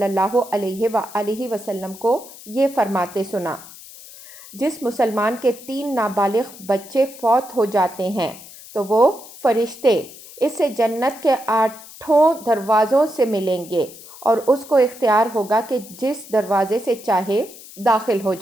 اللہ علیہ وآلہ وسلم کو یہ فرماتے سنا، جس مسلمان کے 3 نابالغ بچے فوت ہو جاتے ہیں تو وہ فرشتے اس سے جنت کے 8 دروازوں سے ملیں گے اور اس کو اختیار ہوگا کہ جس دروازے سے چاہے داخل ہو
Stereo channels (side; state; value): left; noise; hiss, 18 dB below the sound